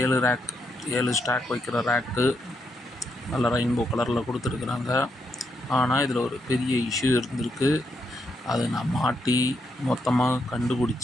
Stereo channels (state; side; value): normal; both; correlation 0.79